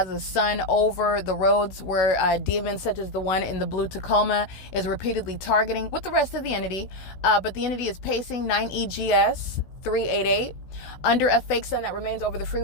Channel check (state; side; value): late; right; 16 ms